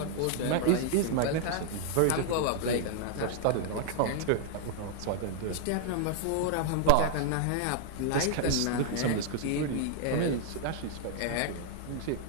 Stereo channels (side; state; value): both; different; correlation -0.01